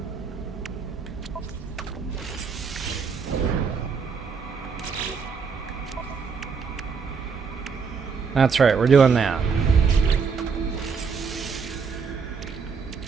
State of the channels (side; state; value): left; quieter; 5.7 dB